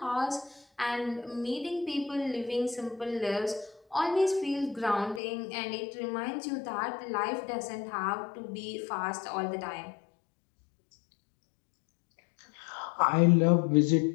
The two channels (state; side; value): drops out; right; at 5.2 s